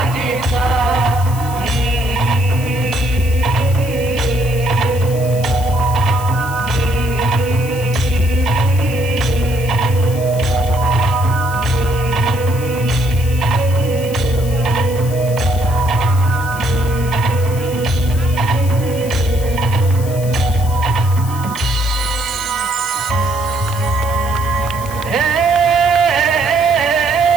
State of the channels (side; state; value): left; noise; hiss, 15 dB below the sound